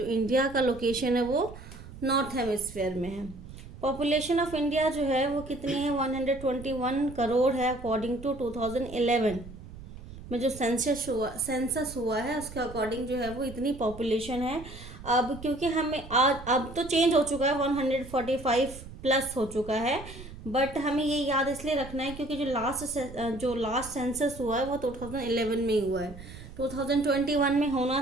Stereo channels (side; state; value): right; noise; rumble, 15 dB below the sound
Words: इंडिया का लोकेशन है वो नॉर्थ हेमिस्फेयर में है। पॉपुलेशन ऑफ इंडिया जो है वो कितनी है, 121 करोड़ है अकॉर्डिंग टू 2011 में जो सेंसस हुआ है उसके अकॉर्डिंग जो है वो इतनी पॉपुलेशन है। अब क्योंकि हमें आज अब तो चेंज हो चुका है, 145 प्लस हो चुका है, बट हमें ये याद इसलिए रखना है क्योंकि जो लास्ट सेंसस हुआ है वो 2011 में ही हुआ है। 2021 में